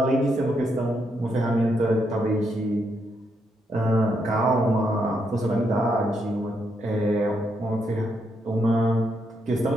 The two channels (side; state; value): both; normal; correlation 0.78